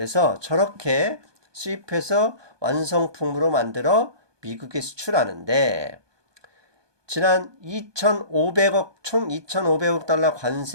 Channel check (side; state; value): left; late; 1.2 ms